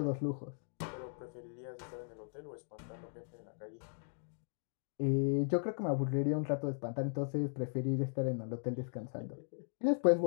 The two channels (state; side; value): silent; right; digital silence